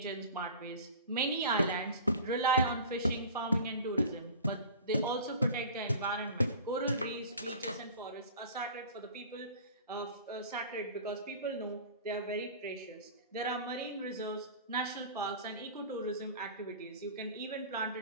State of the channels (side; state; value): both; inverted; correlation -0.40